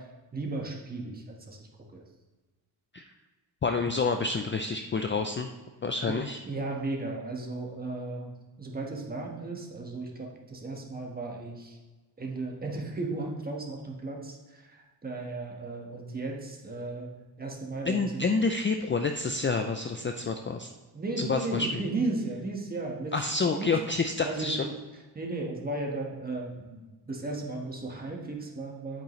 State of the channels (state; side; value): normal; both; correlation 0.32